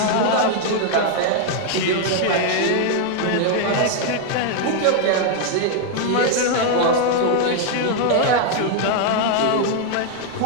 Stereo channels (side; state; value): both; different; correlation 0.00